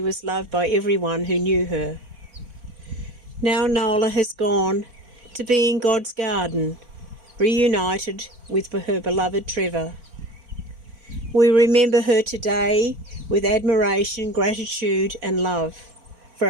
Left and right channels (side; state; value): left; late; 4.4 ms